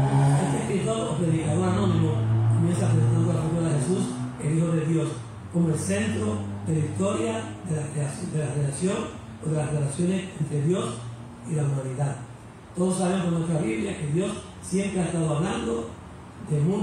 Este escritor o predicador anónimo comienza presentando la figura de Jesús, el Hijo de Dios, como el centro de la historia de la relación o de las relaciones entre Dios y la humanidad. Todos sabemos por nuestra Biblia que Dios siempre ha estado hablando de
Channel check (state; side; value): identical; both; correlation 1.00